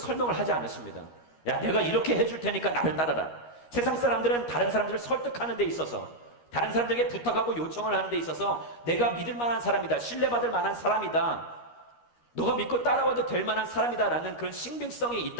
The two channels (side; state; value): right; late; 13 ms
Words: 하지 않으십니다. 야, 내가 이렇게 해줄 테니까 나를 따라라. 세상 사람들은 다른 사람들을 설득하는 데 있어서, 다른 사람들에게 부탁하고 요청을 하는 데 있어서 내가 믿을 만한 사람이다, 신뢰받을 만한 사람이다, 너가 믿고 따라와도 될 만한 사람이다 라는 그런 신빙성이